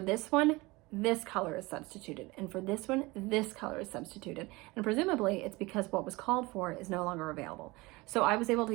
this one, this color is substituted. And for this one, this color is substituted. And presumably it's because what was called for is no longer available. So I was able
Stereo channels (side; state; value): left; quieter; 22.8 dB